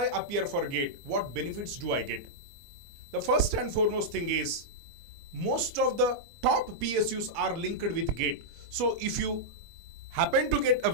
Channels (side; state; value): left; late; 23 ms